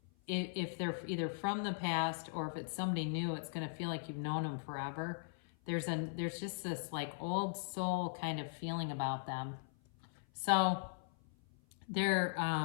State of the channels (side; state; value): right; silent; 52 dB below the other